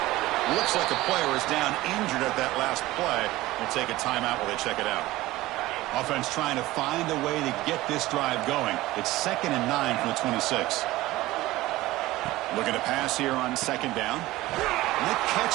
Looks like a player is down injured at that last play. We'll take a timeout while they check it out. Offense trying to find a way to get this drive going. It's 2nd and 9 from the 26. Looking to pass here on 2nd down. And the catch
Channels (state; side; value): quieter; left; 17.8 dB